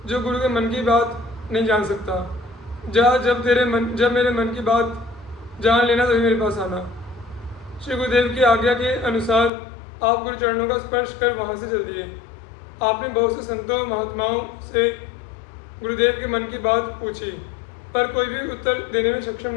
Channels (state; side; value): drops out; right; at 9.5 s